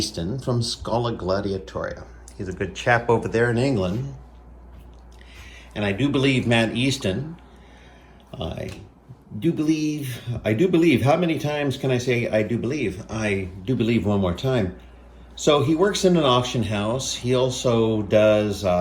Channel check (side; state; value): both; identical; correlation 1.00